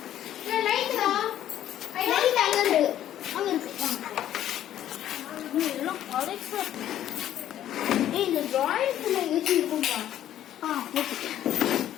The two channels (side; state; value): right; quieter; 11.7 dB